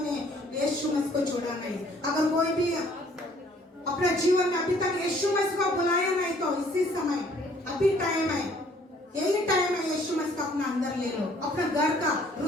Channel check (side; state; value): both; normal; correlation 0.59